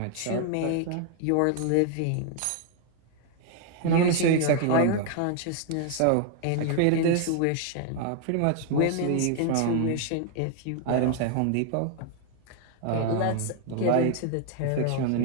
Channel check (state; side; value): different; both; correlation 0.00